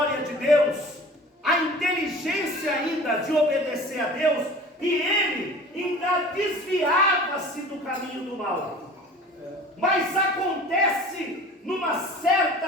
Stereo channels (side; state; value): both; normal; correlation 0.42